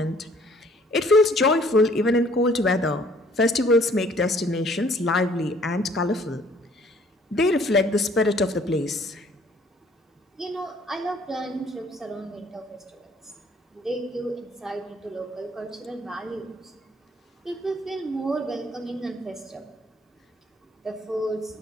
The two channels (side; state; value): both; normal; correlation 0.58